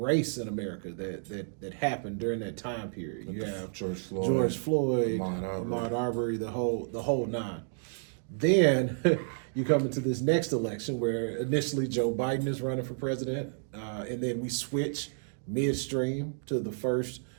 in America that happened during that time period. You have George Floyd, Ahmaud Arbery, the whole nine. Then you come into this next election where initially Joe Biden is running for president, and then we switch midstream to the first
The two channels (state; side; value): silent; left; digital silence